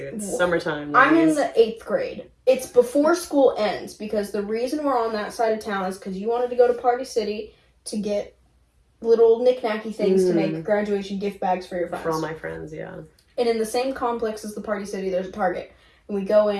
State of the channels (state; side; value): identical; both; correlation 1.00